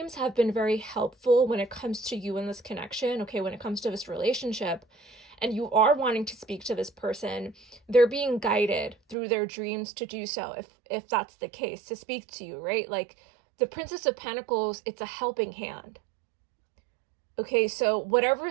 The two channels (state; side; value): drops out; left; at 9.2 s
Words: have been very helpful when it comes to you in this connection, okay, when it comes to this relationship, and you are wanting to speak to this person, they're being guided through their dreams to do so, if that's the case, to speak to you, right? Like, the Princess of Pentacles, it's a helping hand. Okay, so whatever